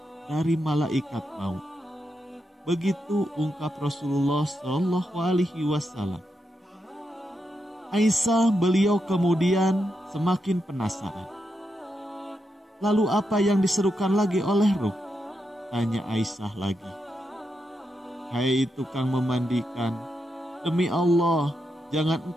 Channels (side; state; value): both; normal; correlation 0.85